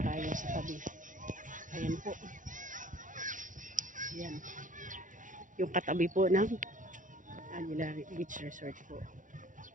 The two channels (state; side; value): late; left; 0.38 ms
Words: sa tabi. Ayan po, ayan yung katabi po ng Aguila Beach Resort po.